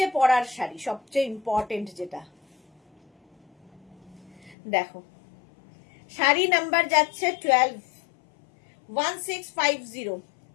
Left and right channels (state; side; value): drops out; right; at 4.5 s